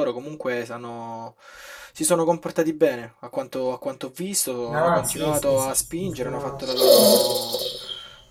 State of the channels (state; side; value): identical; both; correlation 1.00